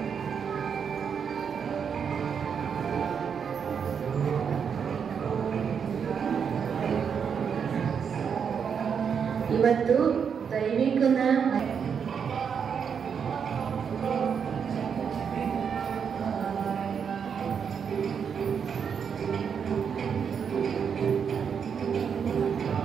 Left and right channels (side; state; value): left; quieter; 7.0 dB